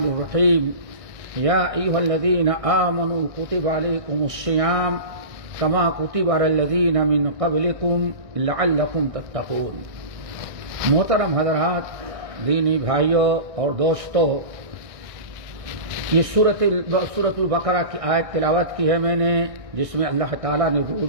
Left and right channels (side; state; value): left; late; 1.6 ms